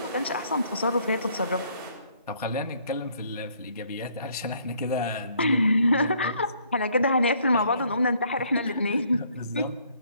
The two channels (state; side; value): inverted; both; correlation -0.65